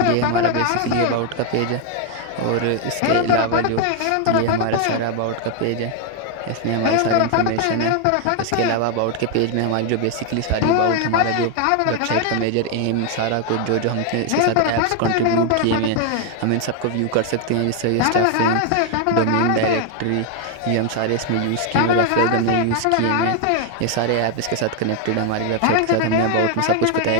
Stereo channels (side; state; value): both; different; correlation 0.01